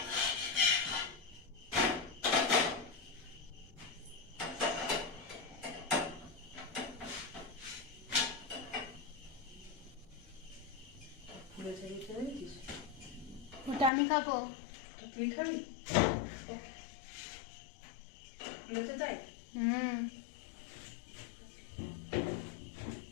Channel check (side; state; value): right; drops out; at 13.9 s